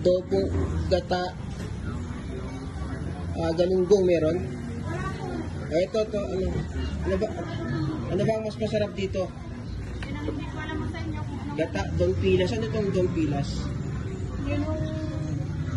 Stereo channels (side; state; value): both; identical; correlation 1.00